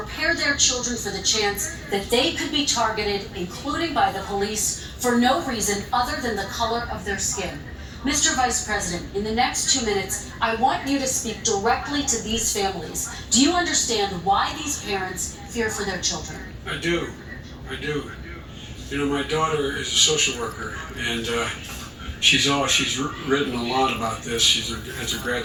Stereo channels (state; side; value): identical; both; correlation 1.00